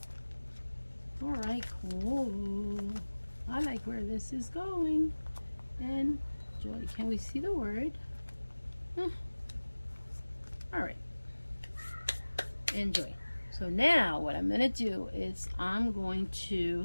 All right, cool. I like where this is going. Enjoy. Can we see the word? All right. Enjoy. So now what I'm going to do is I'm going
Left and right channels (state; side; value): inverted; both; correlation -1.00